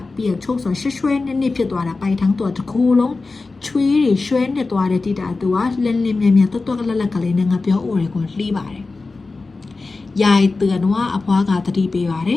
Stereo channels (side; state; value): right; quieter; 3.7 dB